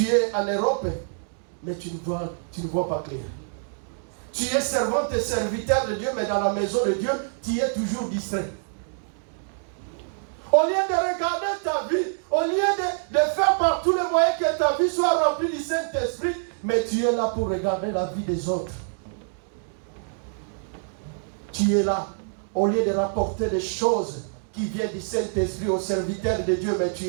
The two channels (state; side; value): silent; left; digital silence